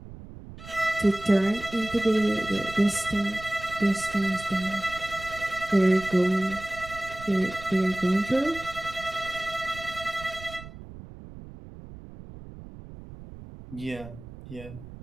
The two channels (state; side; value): noise; right; rumble, 15 dB below the sound